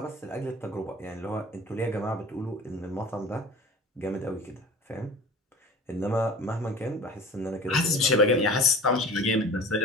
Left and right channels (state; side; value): normal; both; correlation 0.39